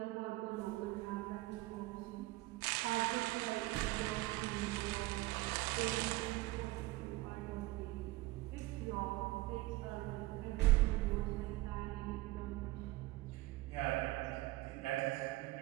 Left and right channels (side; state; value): left; quieter; 19.4 dB